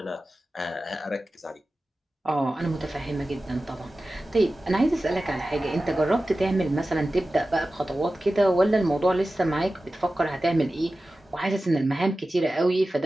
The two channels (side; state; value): both; normal; correlation 0.95